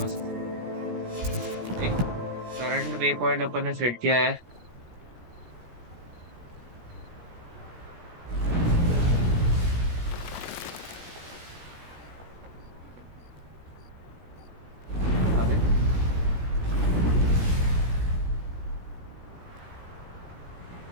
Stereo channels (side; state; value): left; late; 17 ms